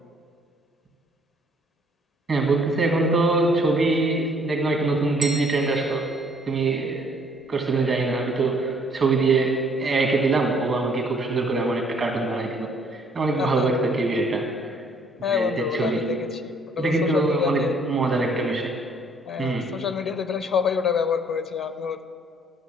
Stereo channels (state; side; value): normal; both; correlation 0.62